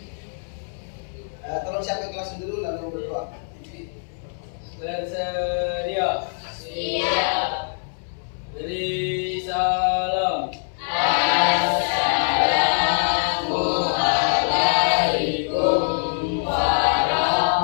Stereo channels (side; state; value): right; silent; 63 dB below the other